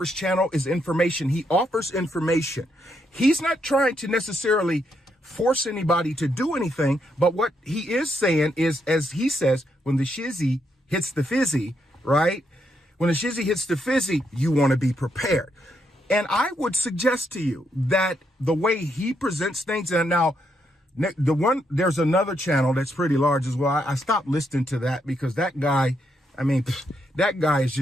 channel is information. He offers information. He's not trying to necessarily force anybody to do anything, but what he is saying is, as he says, when the shizzy hits the fizzy, right? When the shizzy hits the fizzy, you want to be prepared. And I would suggest to you that the way he presents things, and now there's another channel that's pretty large as well. I stopped listening to that, because that guy, that guy is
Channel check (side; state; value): both; normal; correlation 0.78